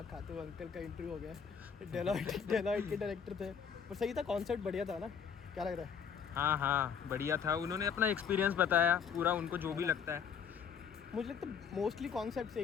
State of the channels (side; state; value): right; quieter; 7.1 dB